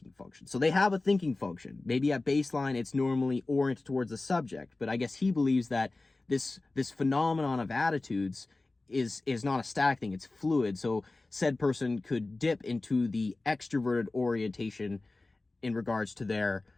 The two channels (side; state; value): right; quieter; 3.2 dB